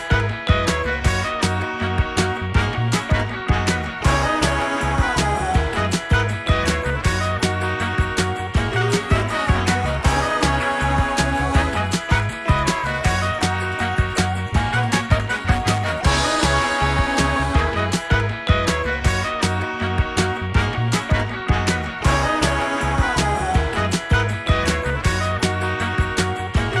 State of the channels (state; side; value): identical; both; correlation 1.00